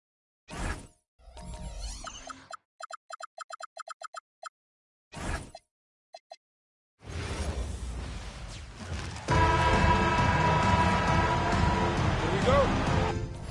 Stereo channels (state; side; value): identical; both; correlation 1.00